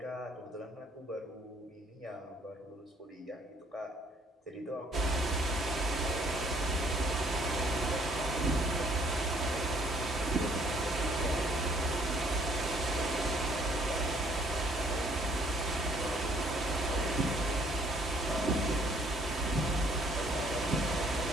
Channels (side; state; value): both; normal; correlation 0.63